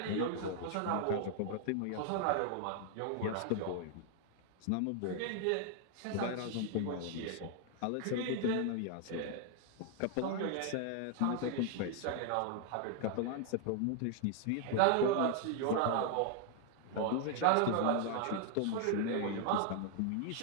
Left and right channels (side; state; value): both; different; correlation 0.00